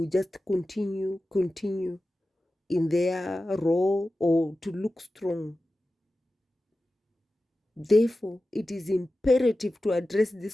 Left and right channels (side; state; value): both; normal; correlation 0.94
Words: just continue in their role or to look strong. Therefore, it is imperative to address